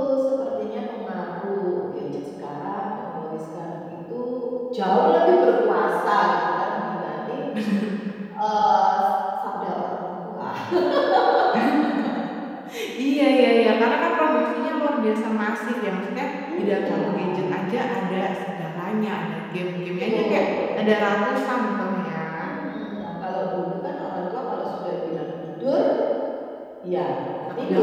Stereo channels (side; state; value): both; identical; correlation 1.00